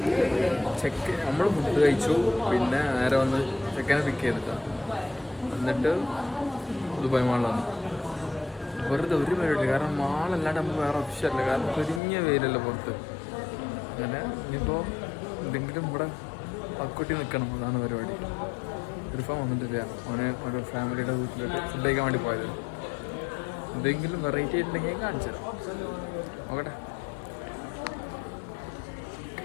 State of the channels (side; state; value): right; drops out; at 12.0 s